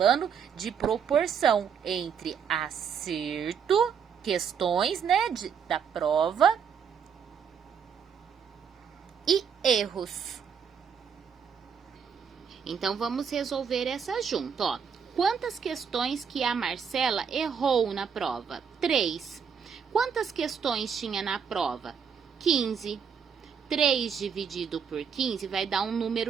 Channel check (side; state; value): left; quieter; 6.9 dB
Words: de proporção entre acerto, questões, né, da prova, e erros. Então, vamos resolver essa junto, ó. Quantas questões que a Marcela errou na prova? 3. Quantas questões tinha na prova? 15. 3 dividido por 15 vai dar um